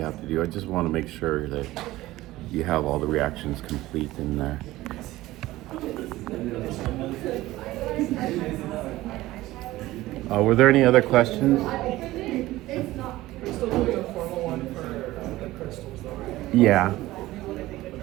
have to do. I just want to make sure that you have all the reactions complete in there. Were there any other questions? We're still doing a formal one for the crystals, though, right? Yeah.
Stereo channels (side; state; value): left; quieter; 17.1 dB